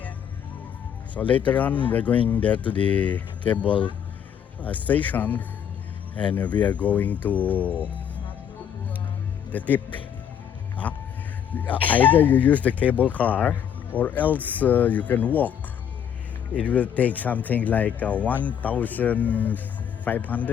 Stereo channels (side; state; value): right; quieter; 8.6 dB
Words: So later on, we're going there to the cable station, and we are going to the tip. Either you use the cable car, or else you can walk. It will take something like